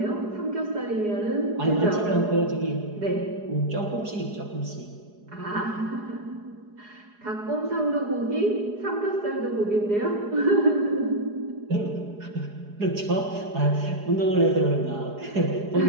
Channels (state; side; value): late; left; 4.8 ms